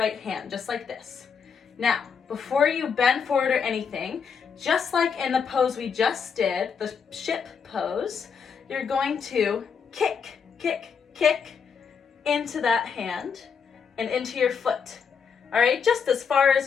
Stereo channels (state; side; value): quieter; right; 6.4 dB